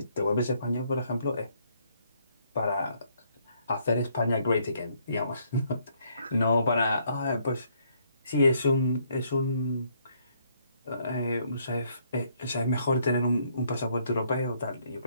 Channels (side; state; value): both; inverted; correlation -0.69